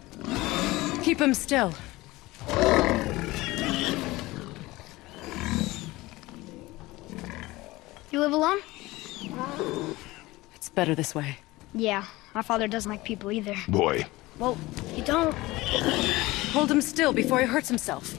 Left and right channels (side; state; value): right; quieter; 19.8 dB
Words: Keep him still. You live alone? It's better this way. Yeah, my father doesn't like people either. Boy. Well, you don't. Hold him still before he hurts himself.